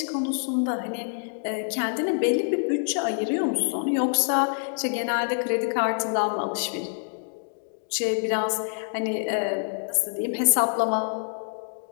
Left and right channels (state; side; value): silent; right; digital silence